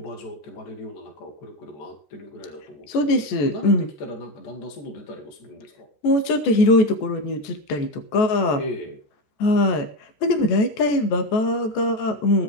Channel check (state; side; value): late; right; 14 ms